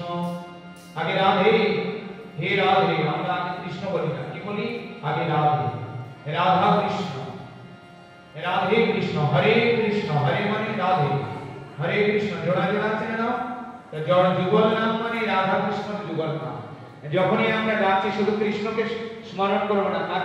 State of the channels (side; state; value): both; identical; correlation 1.00